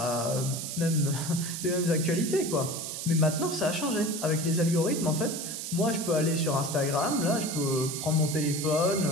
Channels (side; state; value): right; noise; hiss, 6 dB below the sound